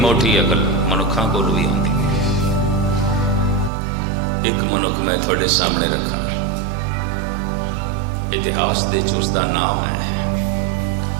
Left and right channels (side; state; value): left; drops out; at 3.7 s